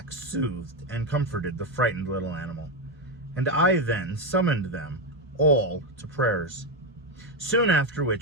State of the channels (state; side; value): normal; both; correlation 0.08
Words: soothed and comforted the frightened little animal, and I then summoned them all to prayers, soon after